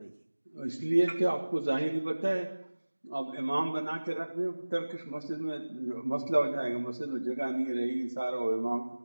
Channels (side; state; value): both; inverted; correlation -1.00